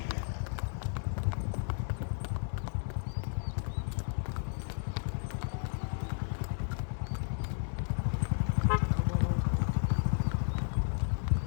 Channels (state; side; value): silent; right; digital silence